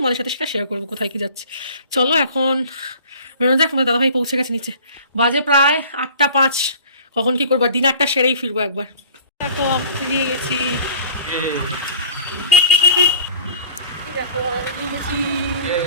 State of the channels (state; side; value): inverted; both; correlation -0.46